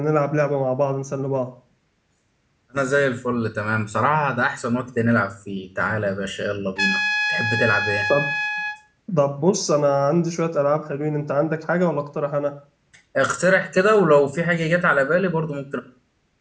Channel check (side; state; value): both; identical; correlation 1.00